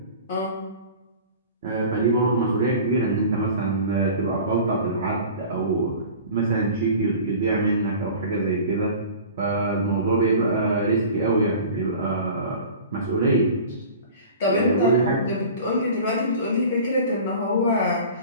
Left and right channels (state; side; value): inverted; both; correlation -0.40